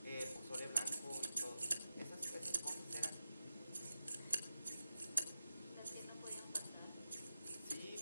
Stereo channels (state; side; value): inverted; both; correlation -0.91